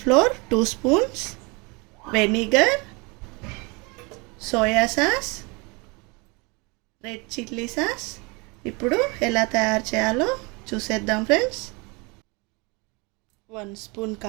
2 spoons, vinegar, soya sauce, red chilli sauce. ఇప్పుడు ఎలా తయారు చేయాలో చూసేద్దాం ఫ్రెండ్స్. 1 స్పూన్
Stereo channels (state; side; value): quieter; left; 28.6 dB